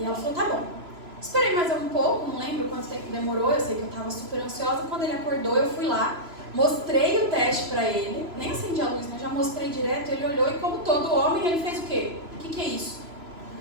ela falou, tá bom. Esperei mais um pouco, não lembro quanto tempo demorou, eu sei que eu tava super ansiosa. Quando ele acordou, eu fui lá, mostrei o teste pra ele, nem acendi a luz, né? Já mostrei direto, ele olhou e como todo homem, ele fez o quê? O que é isso?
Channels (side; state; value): left; late; 3.0 ms